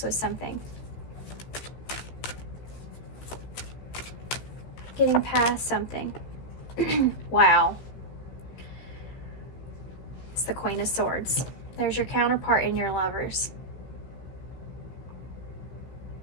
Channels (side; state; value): right; late; 16 ms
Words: with something. Getting past something. Wow. It's the Queen of Swords. There's your counterpart in your lovers.